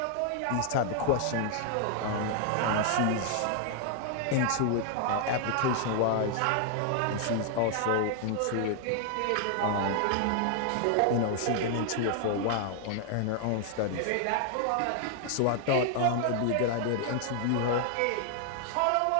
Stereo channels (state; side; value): different; both; correlation 0.00